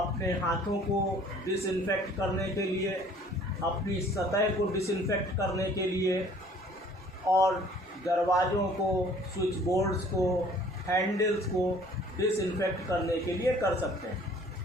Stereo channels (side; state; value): both; normal; correlation 0.54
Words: हाथों को डिसइंफेक्ट करने के लिए, अपनी सतह को डिसइंफेक्ट करने के लिए और दरवाज़ों को, स्विच बोर्ड्स को, हैंडल्स को डिसइंफेक्ट करने के लिए कर सकते हैं।